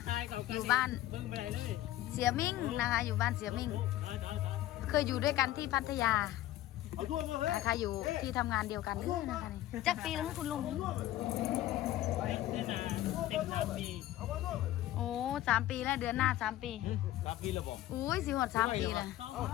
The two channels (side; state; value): right; quieter; 14.4 dB